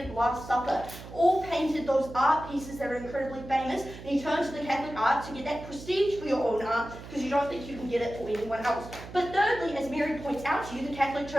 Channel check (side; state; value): right; noise; hum, 14 dB below the sound